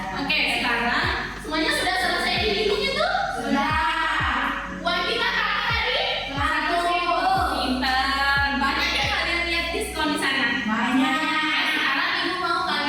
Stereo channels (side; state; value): both; identical; correlation 1.00